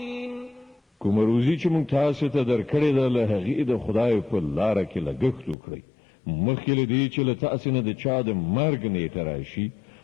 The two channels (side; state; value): right; drops out; at 5.6 s